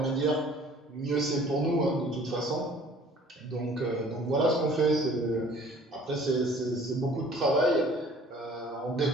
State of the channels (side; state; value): both; normal; correlation 0.52